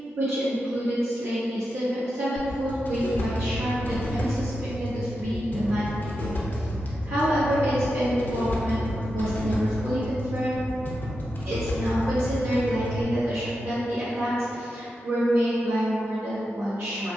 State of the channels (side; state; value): both; normal; correlation 0.88